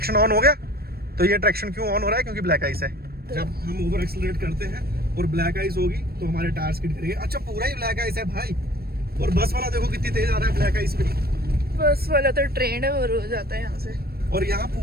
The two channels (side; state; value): left; late; 0.45 ms